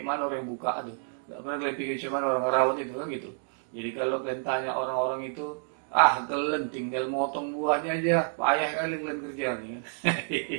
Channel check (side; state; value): left; silent; 58 dB below the other